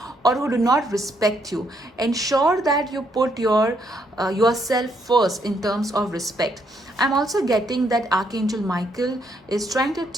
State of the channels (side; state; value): both; normal; correlation 0.73